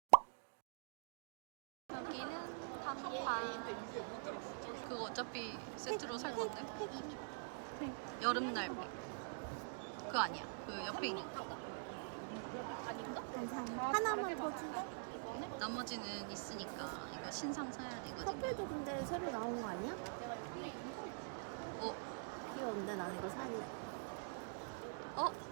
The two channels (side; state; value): left; silent; digital silence